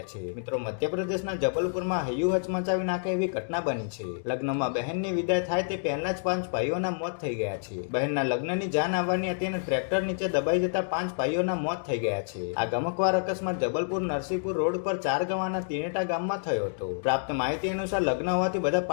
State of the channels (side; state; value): right; silent; digital silence